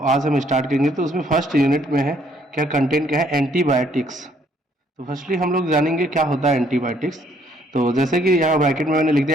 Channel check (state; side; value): normal; both; correlation 0.65